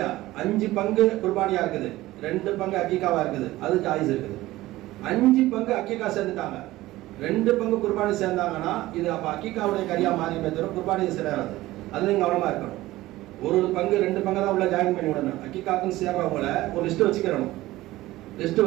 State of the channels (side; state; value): left; quieter; 17.2 dB